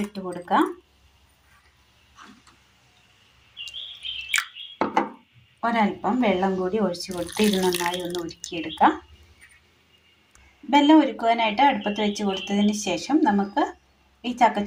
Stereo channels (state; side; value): identical; both; correlation 1.00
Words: ഇട്ട് കൊടുക്കാം. ഒരൽപ്പം വെള്ളം കൂടി ഒഴിച്ചു കൊടുത്ത് ഇത് നന്നായി ഒന്ന് ഉരുക്കിയെടുക്കാം. വെള്ളം ഉരുക്കുവാനായിട്ട് അടുപ്പത്ത് വെച്ച് കൊടുത്തതിന് ശേഷം നമുക്ക് ഈ